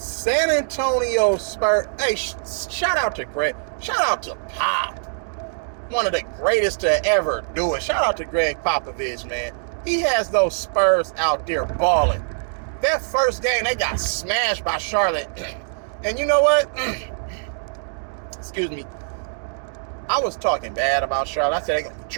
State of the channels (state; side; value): silent; left; digital silence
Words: Antonio Spurs. Hey, shout out to Greg. Shout out to Pop. One of the greatest to ever do it. Shout out to Greg Popovich, man. He has those Spurs out there balling. That first game, they got smashed by Charlotte. And you know what? Excuse me. I was talking bad about Charlotte. I said they're going to be